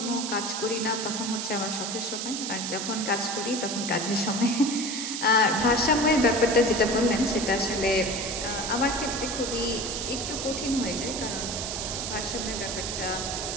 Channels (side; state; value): right; noise; hiss, 4 dB below the sound